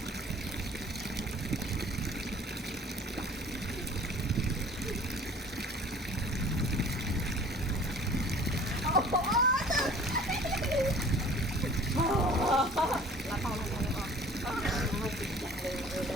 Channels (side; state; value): both; normal; correlation 0.48